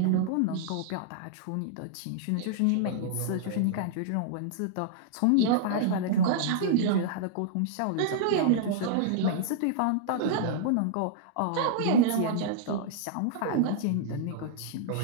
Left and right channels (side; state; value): both; different; correlation -0.02